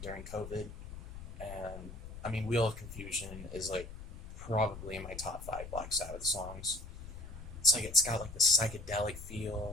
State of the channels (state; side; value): noise; left; rumble, 12 dB below the sound